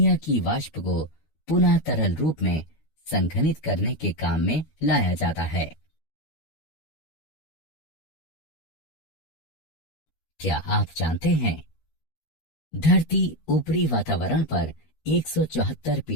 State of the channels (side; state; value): right; late; 13 ms